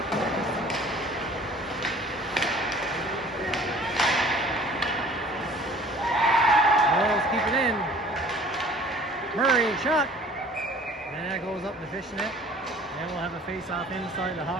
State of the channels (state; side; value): normal; both; correlation 0.50